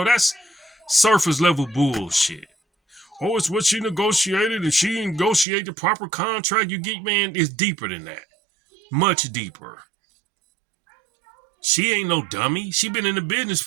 That's surface level bullshit. Oh, it's what she negotiated and she negotiated the proper contract. You get, man, it's deeper than that. Much deeper. She ain't no dummy. She been in the business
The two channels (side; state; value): left; drops out; at 5.5 s